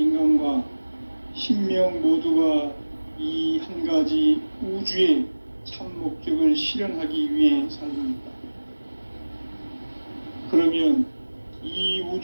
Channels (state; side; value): inverted; both; correlation -1.00